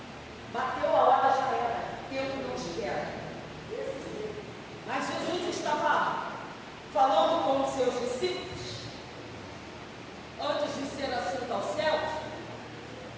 Bateu a hora, já era. Tempo não espera. Mas Jesus estava falando com os seus discípulos antes de ser assunto aos céus.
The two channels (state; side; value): identical; both; correlation 1.00